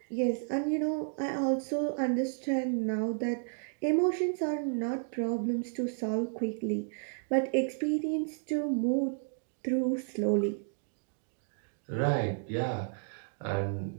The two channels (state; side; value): silent; left; digital silence